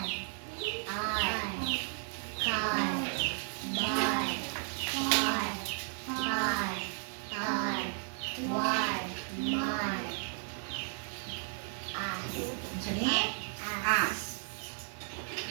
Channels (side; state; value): left; silent; 55 dB below the other